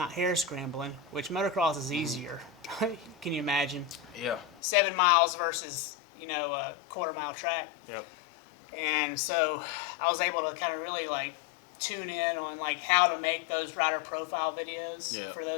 hair scrambling, which motocross is easier. Can you imagine? Yeah. 7 miles versus, a quarter-mile track. Yep. And so I was able to kind of really, tune in on, how to make those rider profile videos for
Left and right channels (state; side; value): drops out; right; at 4.6 s